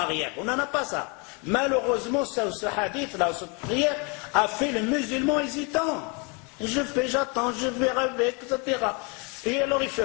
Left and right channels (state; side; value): quieter; right; 32.3 dB